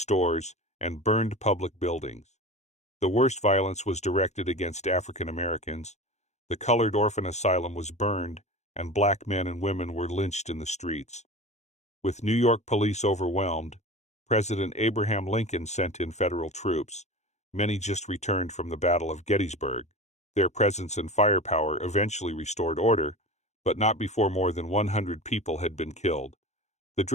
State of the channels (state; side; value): late; right; 0.33 ms